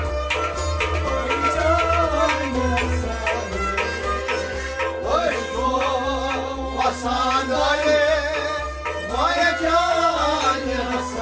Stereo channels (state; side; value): identical; both; correlation 1.00